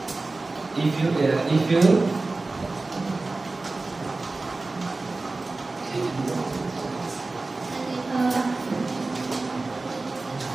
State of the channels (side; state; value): left; quieter; 3.4 dB